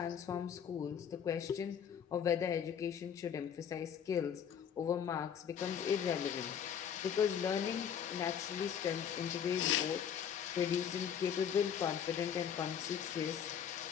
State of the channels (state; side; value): quieter; right; 8.2 dB